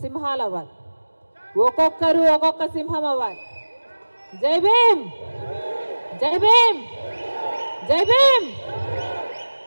సింహాలు అవ్వాలి, ఒక్కొక్కరు ఒక్కొక్క సింహం అవ్వాలి. జై భీమ్, జై భీమ్, జై భీమ్.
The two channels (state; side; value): inverted; both; correlation -1.00